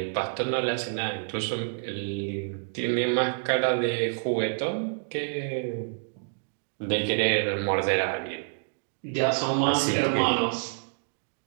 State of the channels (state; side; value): silent; left; digital silence